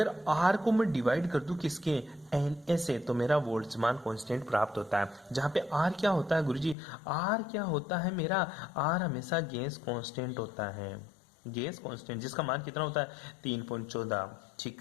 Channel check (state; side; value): drops out; right; at 6.8 s